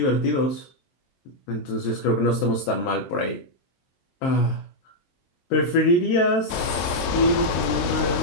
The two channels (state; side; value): late; right; 23 ms